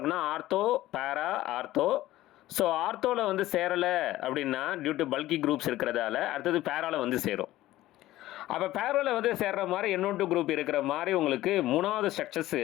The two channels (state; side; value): quieter; right; 15.7 dB